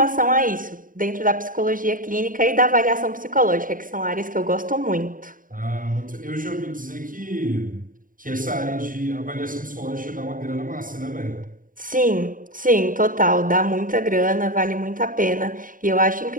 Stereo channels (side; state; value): left; late; 0.40 ms